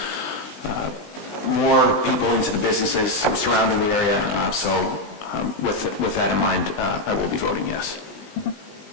more people into the businesses surrounding the area. So with that in mind, I will be voting yes.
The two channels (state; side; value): late; right; 20 ms